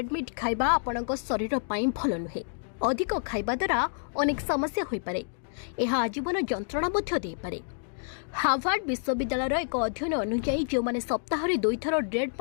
मीट खाइबा आपणक शरीर पाई भल नुहे। अधिक खाइबा द्वारा अनेक समस्या होई पारे। यह आजीवन जंत्रणा मध्य दे पारे। हार्वर्ड विश्वविद्यालय एक अध्ययन अनुसार जो माने सप्ताह रे 2 थर रेड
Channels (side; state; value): right; silent; digital silence